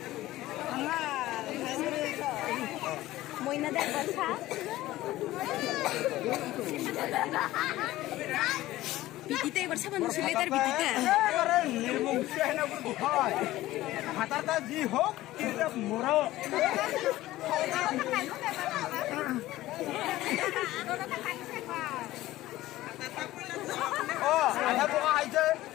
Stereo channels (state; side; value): quieter; right; 16.2 dB